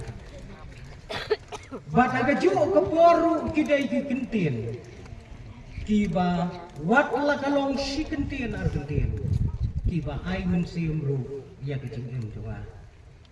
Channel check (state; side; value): identical; both; correlation 1.00